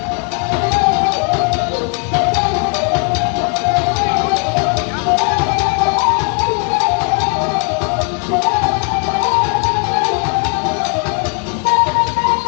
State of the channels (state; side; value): quieter; right; 35.9 dB